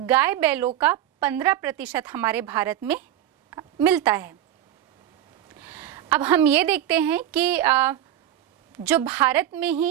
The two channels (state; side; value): quieter; left; 11.8 dB